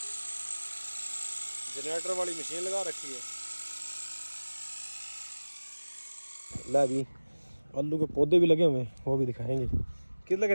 جنریٹر والی مشین لگا رکھی ہے۔ ला भी आलू के पौधे भी लगे हुए हैं, वो भी दिखाएंगे। कितने लग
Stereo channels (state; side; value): inverted; both; correlation -1.00